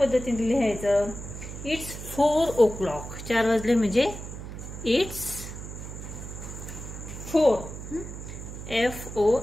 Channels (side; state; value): right; noise; hum, 10 dB below the sound